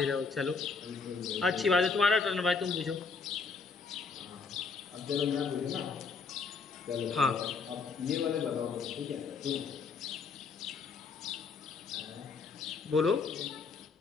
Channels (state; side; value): quieter; right; 4.9 dB